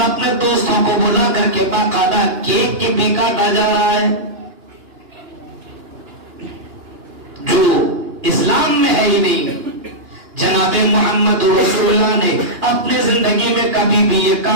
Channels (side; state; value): left; late; 2.9 ms